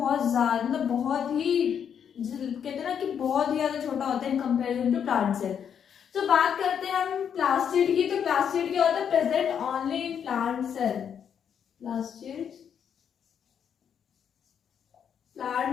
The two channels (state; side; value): quieter; right; 8.0 dB